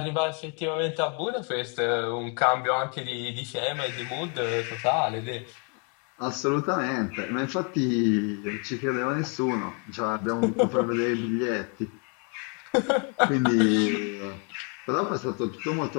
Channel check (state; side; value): quieter; right; 37.2 dB